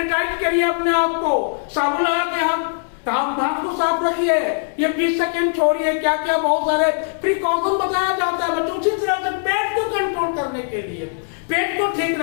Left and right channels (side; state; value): right; silent; digital silence